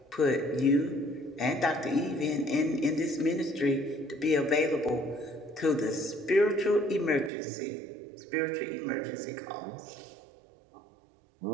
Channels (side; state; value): left; drops out; at 7.3 s